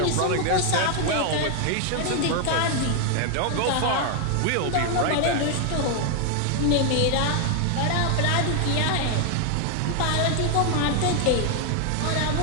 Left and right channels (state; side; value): different; both; correlation 0.00